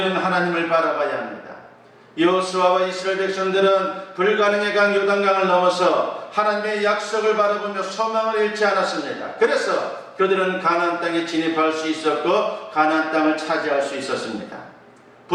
하나님을 바라봐야 합니다. 여호수아와 이스라엘 백성들은 불가능의 강 요단강을 넘어서 하나님의 약속을 바라보며 소망을 잃지 않았습니다. 그래서 그들은 가나안 땅에 진입할 수 있었고 가나안 땅을 차지할 수 있었습니다.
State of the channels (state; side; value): identical; both; correlation 1.00